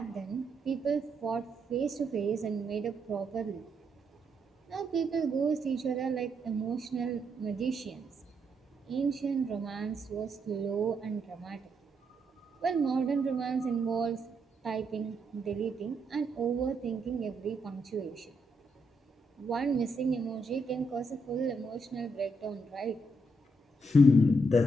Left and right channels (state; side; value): normal; both; correlation 0.78